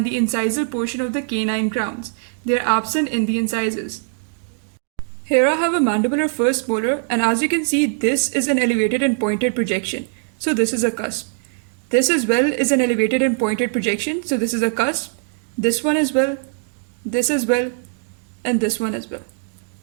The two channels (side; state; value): left; silent; digital silence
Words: the incisal portion of the canine crowns. They are absent in the incisors. Here I have a mandibular first molar, and as you can see, this is an elevated and pointed projection. So this is a cusp. This as well is an elevated and pointed projection. So this is a cusp. This one as well, this as well, and this one as well.